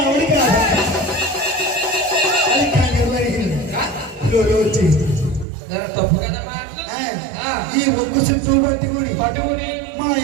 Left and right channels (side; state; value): left; drops out; at 5.5 s